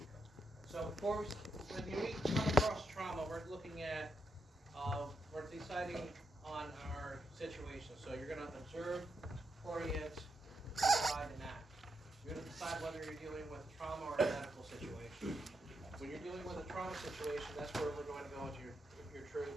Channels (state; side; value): normal; both; correlation 0.82